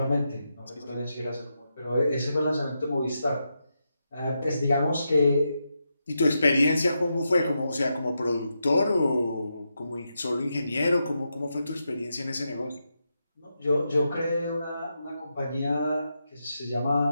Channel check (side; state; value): both; inverted; correlation -0.86